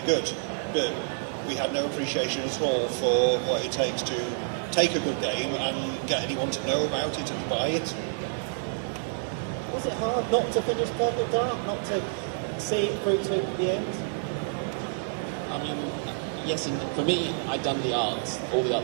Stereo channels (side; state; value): left; silent; digital silence